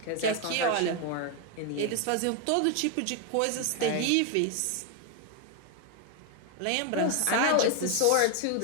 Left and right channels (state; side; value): different; both; correlation 0.01